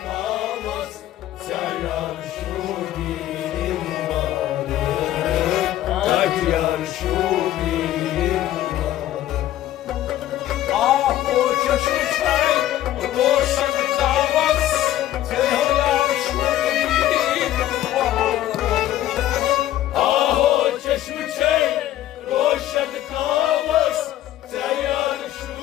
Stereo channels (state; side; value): quieter; right; 13.4 dB